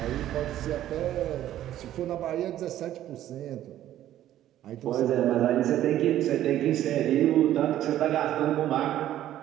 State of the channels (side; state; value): left; quieter; 12.5 dB